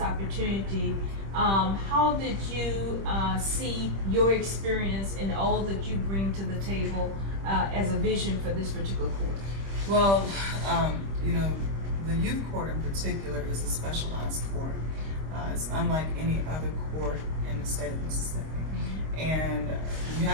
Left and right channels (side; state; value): left; late; 25 ms